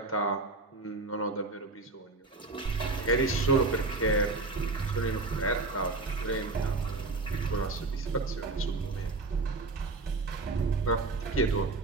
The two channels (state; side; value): quieter; left; 3.4 dB